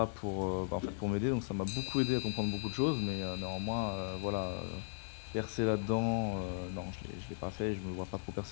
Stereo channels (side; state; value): right; silent; 53 dB below the other